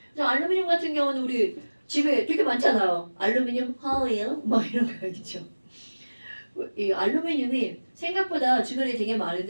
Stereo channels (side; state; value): both; inverted; correlation -1.00